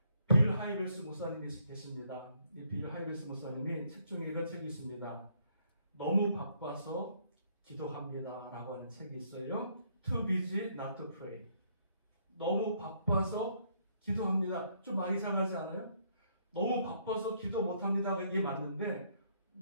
빌 하이벨스 목사님이 계십니다. 이 빌 하이벨스 목사님이 책 중에 이런 책이 있습니다. 너무 바빠서 기도합니다 라고 하는 책이 있어요. Too busy not to pray. 너무 바빠서 기도합니다. 좀 많이 이상하지 않아요? 너무 바빠서 기도 못합니다. 이게 맞는데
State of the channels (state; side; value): inverted; both; correlation -0.68